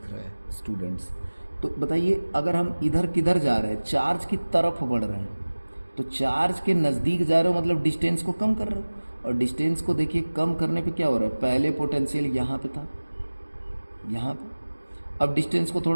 रहा है स्टूडेंट्स। तो बताइए अगर हम इधर किधर जा रहे हैं, चार्ज की तरफ बढ़ रहे हैं, तो चार्ज के नज़दीक जा रहे हो मतलब डिस्टेंस को कम कर रहे हो। और डिस्टेंस को देखिए कम करने पे क्या हो रहा है, पहले पोटेंशियल यहाँ पे था, यहाँ पे। अब डिस्टेंस को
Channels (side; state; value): both; inverted; correlation -1.00